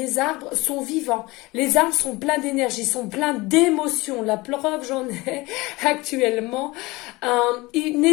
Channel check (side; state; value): right; quieter; 22.1 dB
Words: arbres sont vivants, les arbres sont pleins d'énergie, sont pleins d'émotions. La preuve, j'en ai actuellement.